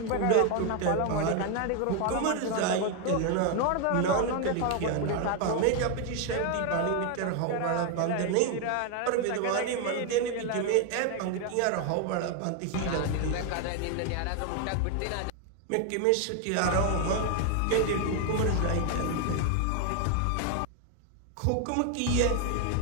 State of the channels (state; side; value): different; both; correlation 0.01